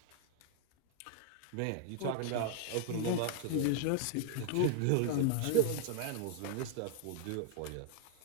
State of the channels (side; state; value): both; different; correlation -0.01